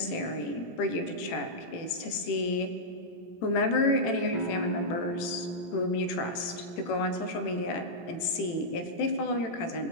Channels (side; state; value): right; late; 18 ms